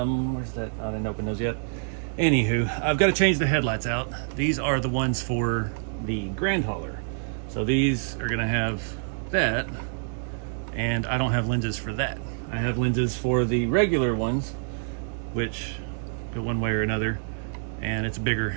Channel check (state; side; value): silent; left; digital silence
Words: that? I didn't open those yet. Anywho, I've got to change the headlights out. These are the ones for the Grand Hauler, so these are going to have that, and I don't have lenses for that. I have lenses for the regular ones, which go one way or another. and it's a bigger